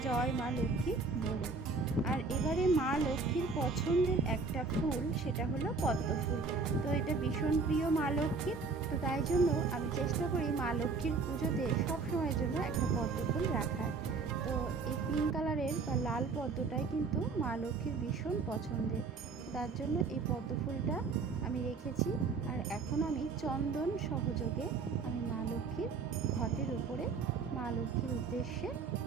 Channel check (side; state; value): left; quieter; 4.4 dB